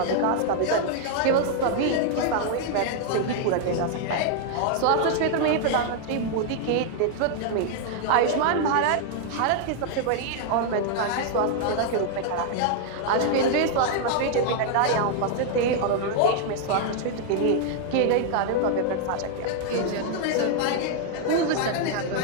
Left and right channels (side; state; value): both; different; correlation 0.00